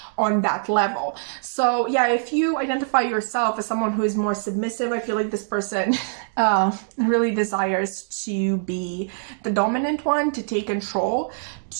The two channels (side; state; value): left; silent; digital silence